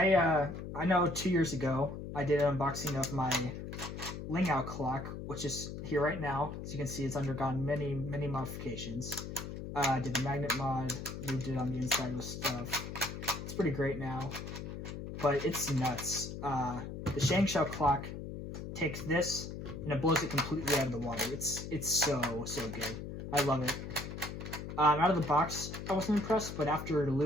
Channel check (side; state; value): left; noise; hum, 8 dB below the sound